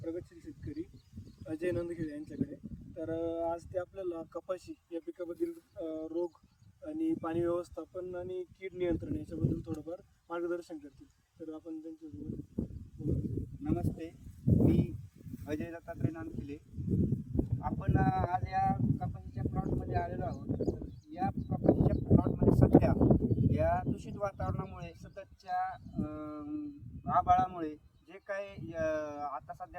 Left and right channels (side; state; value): both; identical; correlation 1.00